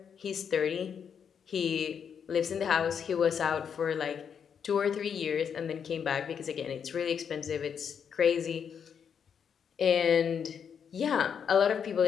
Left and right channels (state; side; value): quieter; right; 7.4 dB